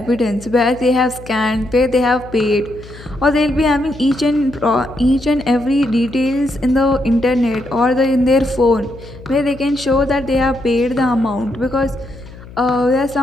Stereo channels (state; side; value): noise; left; hum, 18 dB below the sound